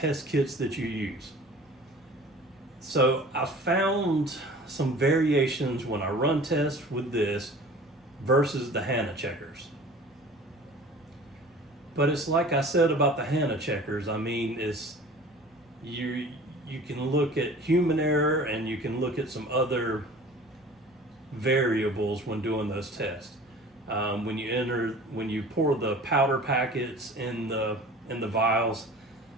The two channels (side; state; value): both; normal; correlation 0.44